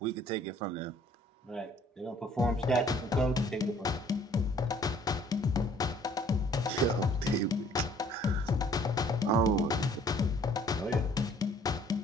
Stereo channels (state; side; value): normal; both; correlation 0.58